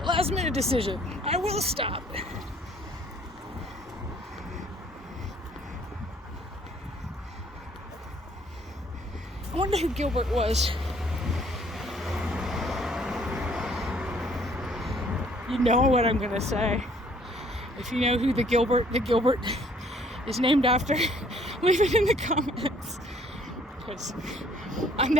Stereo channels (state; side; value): normal; both; correlation 0.60